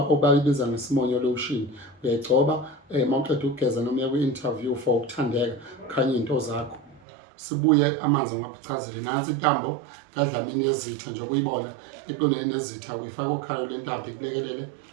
ngesimonyo lotion. Uyayigcoba mawuqeda ukugeza noma uya kwi-interview for ukuthandeka khanye into zakho. Sibuye amanzi ngaphucazile nansi intambo kaDlamini yezitha nje ukuyibona eqondene nezitha uyifaka okhalo lentambo ikulekelele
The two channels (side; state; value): left; drops out; at 7.0 s